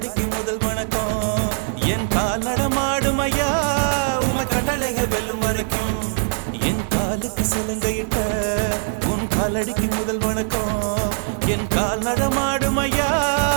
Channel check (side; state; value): left; silent; digital silence